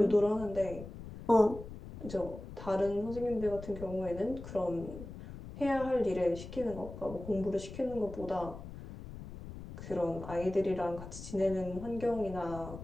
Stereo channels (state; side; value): noise; left; rumble, 12 dB below the sound